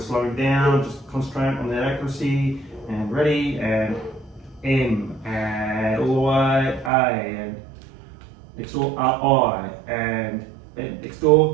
down. Just concentrate on that accuracy. And ready, and M, and all the way A, and next door I, and next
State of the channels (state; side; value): drops out; left; at 6.9 s